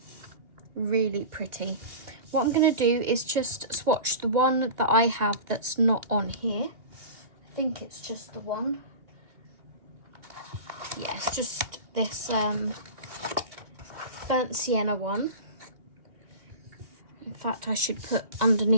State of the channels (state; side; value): late; left; 2.3 ms